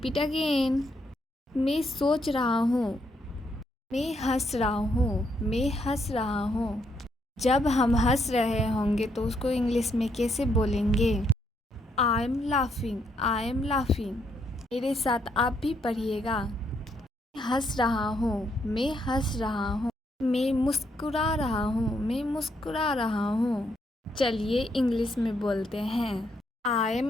again. मैं सोच रहा हूँ, मैं हंस रहा हूँ, मैं हंस रहा हूँ। जब हम हंस रहे होंगे तो उसको इंग्लिश में कैसे बोलेंगे? I am laughing, I am laughing. मेरे साथ आप भी पढ़िएगा। मैं हंस रहा हूँ, मैं हंस रहा हूँ। मैं मुस्कुरा रहा हूँ, मैं मुस्कुरा रहा हूँ। चलिए इंग्लिश में बोलते हैं। I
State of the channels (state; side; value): normal; both; correlation 0.75